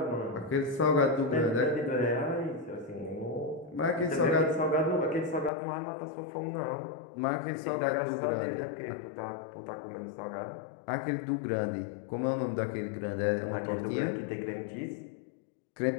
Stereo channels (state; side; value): drops out; right; at 5.5 s